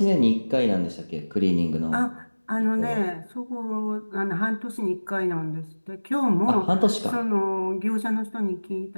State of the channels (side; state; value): both; inverted; correlation -1.00